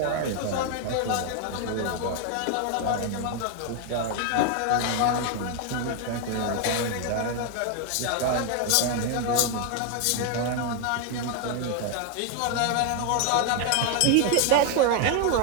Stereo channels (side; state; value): both; different; correlation 0.01